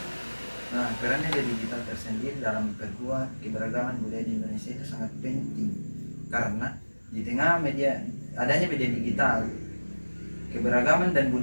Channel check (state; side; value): inverted; both; correlation -1.00